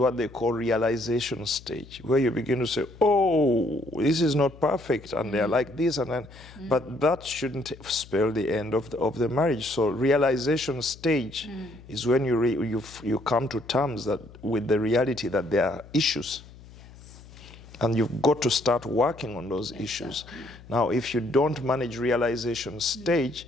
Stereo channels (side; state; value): left; noise; hum, 20 dB below the sound